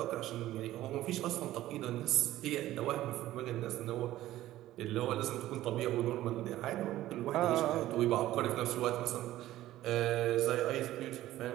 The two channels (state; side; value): quieter; left; 14.8 dB